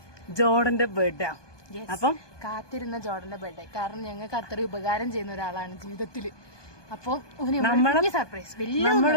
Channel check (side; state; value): right; late; 1.2 ms